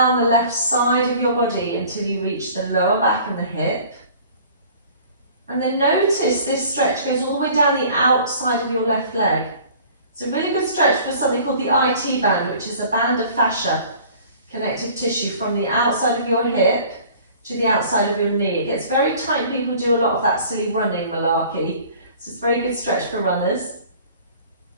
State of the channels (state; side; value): inverted; both; correlation -0.49